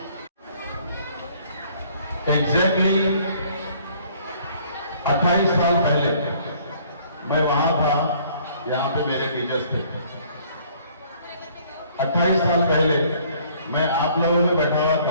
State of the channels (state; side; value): inverted; both; correlation -0.58